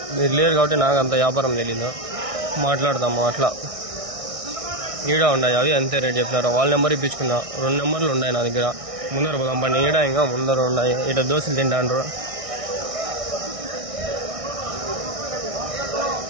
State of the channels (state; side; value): late; left; 1.6 ms